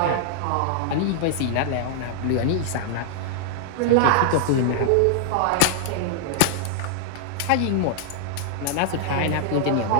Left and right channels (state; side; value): different; both; correlation -0.01